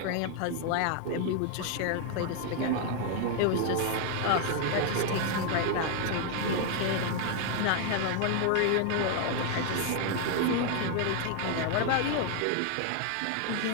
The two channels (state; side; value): different; both; correlation 0.00